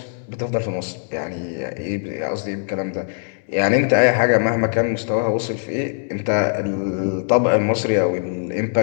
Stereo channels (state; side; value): silent; right; digital silence